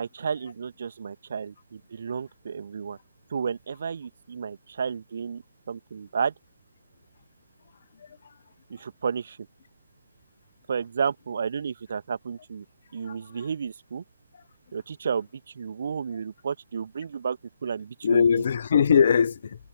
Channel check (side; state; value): both; inverted; correlation -0.78